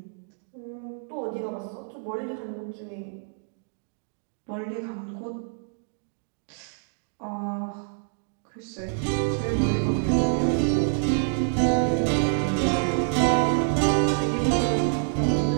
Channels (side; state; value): left; silent; digital silence